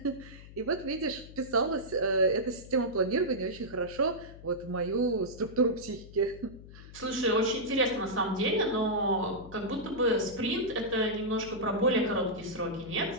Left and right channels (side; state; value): left; noise; hum, 17 dB below the sound